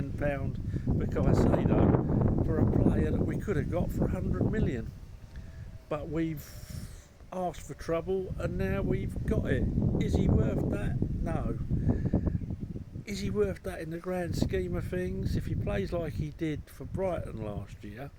for Caceido for a player that we could have got for £100 million. But we've asked for trouble and now we've got it. Is he worth that? No. Is he worth that in the grand scheme of things? If he plays like he did for Brighton last year,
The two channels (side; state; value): both; identical; correlation 1.00